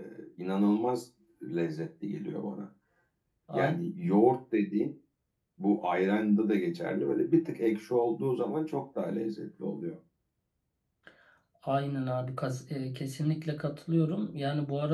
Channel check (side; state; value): both; identical; correlation 1.00